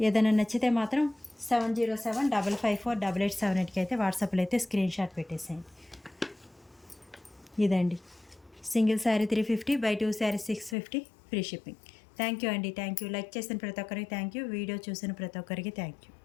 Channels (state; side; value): drops out; right; at 10.8 s